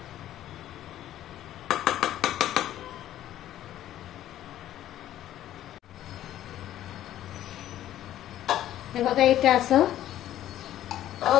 हे बघा, इथे असं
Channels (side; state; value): right; quieter; 12.6 dB